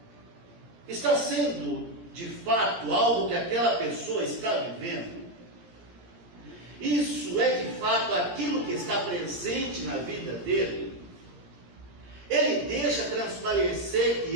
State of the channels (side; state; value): left; late; 17 ms